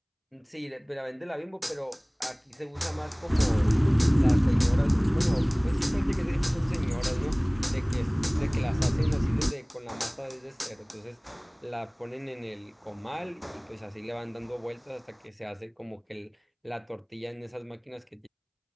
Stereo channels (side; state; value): both; identical; correlation 1.00